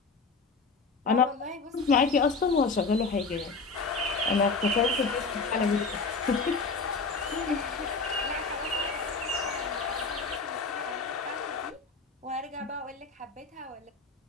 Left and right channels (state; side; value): quieter; right; 4.3 dB